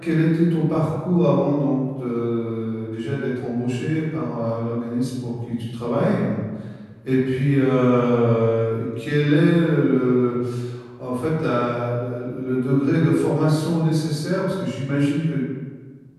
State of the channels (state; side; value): identical; both; correlation 1.00